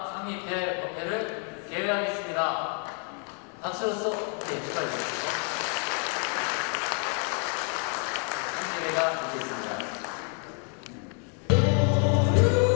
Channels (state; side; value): quieter; right; 38.4 dB